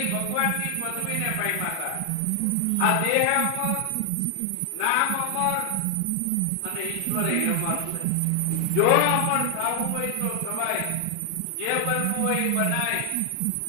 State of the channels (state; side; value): different; both; correlation 0.00